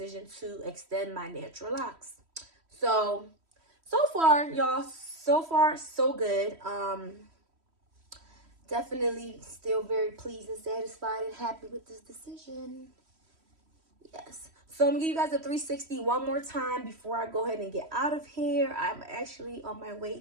to extend my natural locks. So far, y'all, so good. Definitely still very pleased and satisfied and happy with this decision. Yes. So I'm gonna give you guys a 360 one more time before I go ahead and get out of here. I'm actually on my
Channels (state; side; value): late; left; 3.1 ms